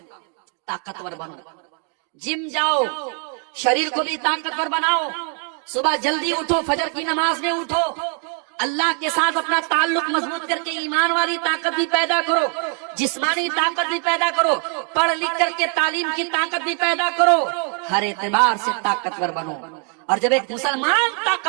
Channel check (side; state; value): left; quieter; 38.2 dB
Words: طاقتور بنو، جم جاؤ، شریر کو بھی طاقتور بناؤ، صبح جلدی اٹھو، فجر کی نماز میں اٹھو، اللہ کے ساتھ اپنا تعلق مضبوط کر کے ایمان والی طاقت بھی پیدا کرو، جسمانی طاقت بھی پیدا کرو، پڑھ لکھ کر کے تعلیم کی طاقت بھی پیدا کرو، ہر اعتبار سے طاقتور بنو۔ اور جب ایک مسلمان